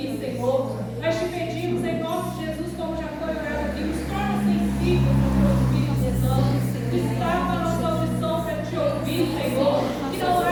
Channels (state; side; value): identical; both; correlation 1.00